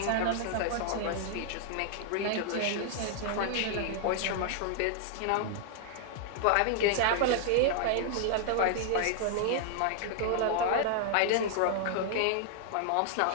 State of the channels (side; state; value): both; different; correlation 0.00